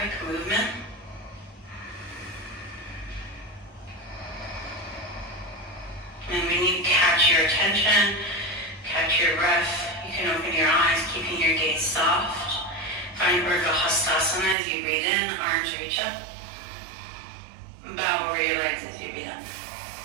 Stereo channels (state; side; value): drops out; left; at 14.6 s